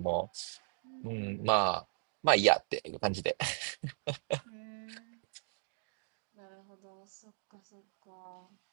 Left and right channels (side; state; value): left; silent; digital silence